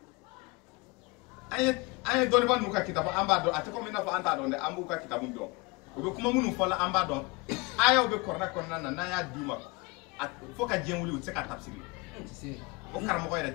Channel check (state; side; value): quieter; right; 26.6 dB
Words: an ye dɔnnibaa ninnu ka kitabu an b'a dɔn a tɛ komi i n'a fɔ an t'a dɔn dɛ an b'u ka kitabu dɔn u bɛ kuma minnu fɔ la an b'a dɔn ayaw bɛ Kuran kɔnɔna na n'an y'a d'u ma fo ka diɲɛ wuli u tɛ se ka tafsir o karamɔgɔ yɛrɛ